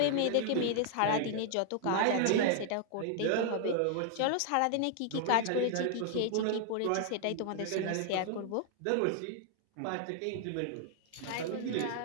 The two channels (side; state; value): both; different; correlation 0.00